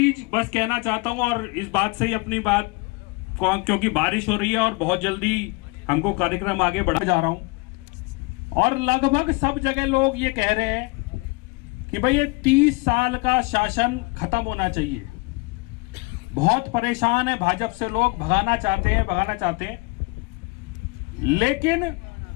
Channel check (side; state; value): right; quieter; 27.1 dB